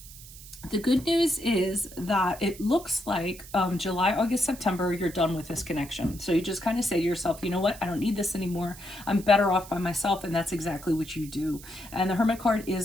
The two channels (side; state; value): right; noise; hiss, 17 dB below the sound